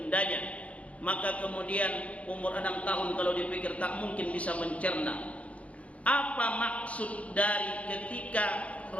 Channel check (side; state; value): right; late; 0.065 ms